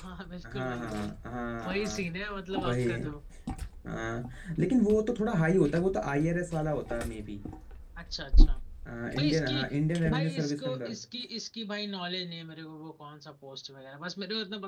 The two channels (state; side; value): identical; both; correlation 1.00